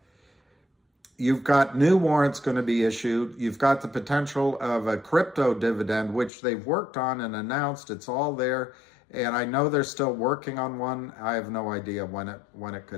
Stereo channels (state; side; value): drops out; right; at 6.3 s